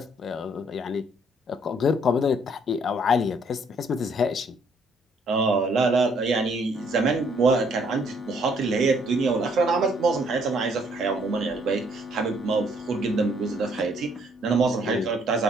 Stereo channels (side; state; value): both; normal; correlation 0.66